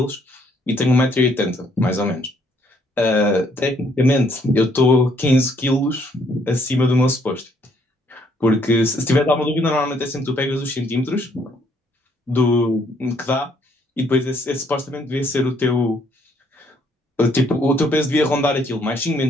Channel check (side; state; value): both; normal; correlation 0.68